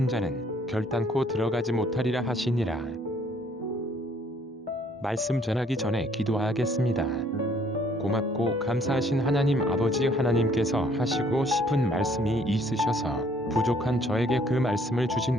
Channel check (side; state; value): both; normal; correlation 0.62